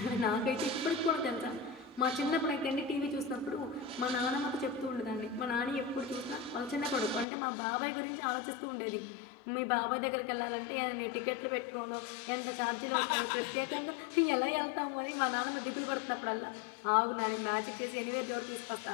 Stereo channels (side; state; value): right; drops out; at 7.2 s